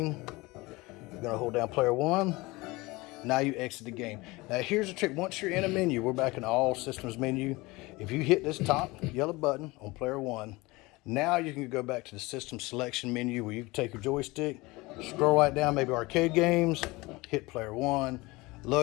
you're going to hold down player 1. Now you exit the game. Now here's the trick. Once you're in a menu, we're back in the all systems menu. If you hit this top yellow button on player 1, now you can go back to the system selection menu where you can take your joystick, scroll right down, maybe arcade games, hit player 1,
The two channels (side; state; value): right; quieter; 22.5 dB